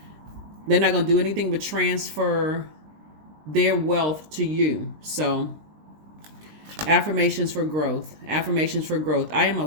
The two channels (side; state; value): left; late; 20 ms